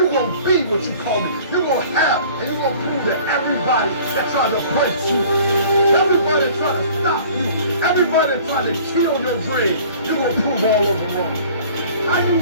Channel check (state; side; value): inverted; both; correlation -0.49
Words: going to be what you called to. You're going to have, and you're going to prove that everybody that tries to break you, everybody that tries to stop you, Everybody trying to kill your dream, you're going to prove all of them wrong. I